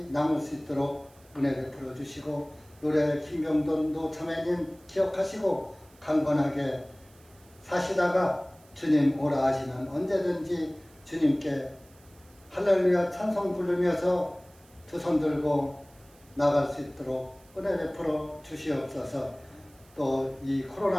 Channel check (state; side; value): noise; right; hiss, 28 dB below the sound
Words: 남을 수 있도록 은혜 베풀어 주시고 노래 김병돈 노자매님 기억하시고 강건하게 사시다가 주님 오라 하시면 언제든지 주님께 할렐루야 찬송 부르면서 두 손 들고 나갈 수 있도록 은혜 베풀어 주시옵소서. 또 이